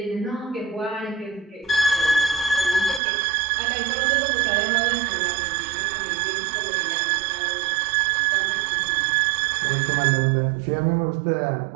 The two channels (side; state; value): left; drops out; at 3.0 s